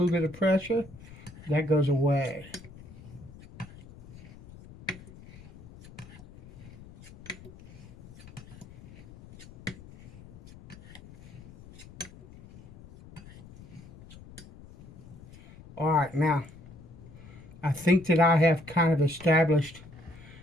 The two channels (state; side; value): noise; left; rumble, 19 dB below the sound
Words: bit of pressure, that goes away. All right, now, I think that I have kind of established